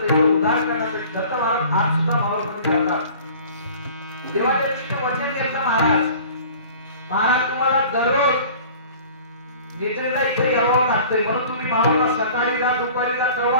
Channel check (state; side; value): inverted; both; correlation -0.46